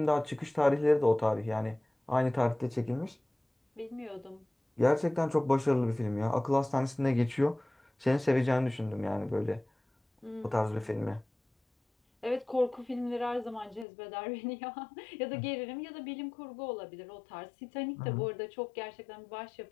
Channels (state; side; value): drops out; right; at 13.9 s